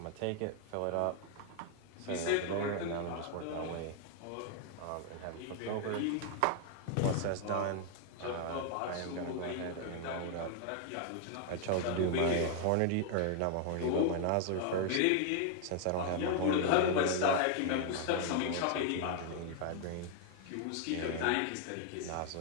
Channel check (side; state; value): both; different; correlation 0.00